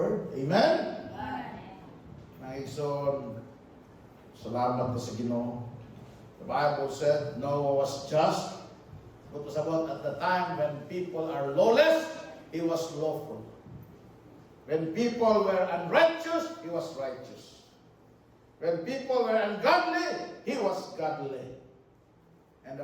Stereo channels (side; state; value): both; identical; correlation 1.00